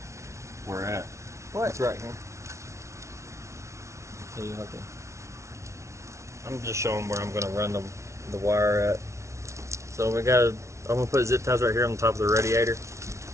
where at? What? It's right here. So you have to. I'm just showing where I'm going to run the wire at. So we got. I'm going to put zip ties right here on the top of the radiator,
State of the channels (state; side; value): late; left; 0.14 ms